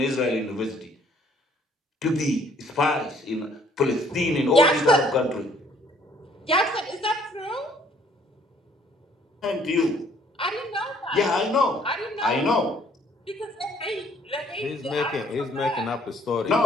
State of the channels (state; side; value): normal; both; correlation 0.62